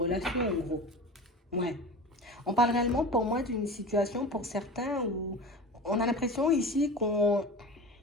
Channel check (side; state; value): both; normal; correlation 0.33